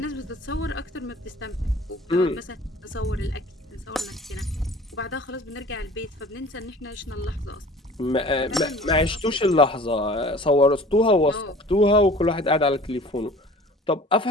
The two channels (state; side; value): normal; both; correlation 0.46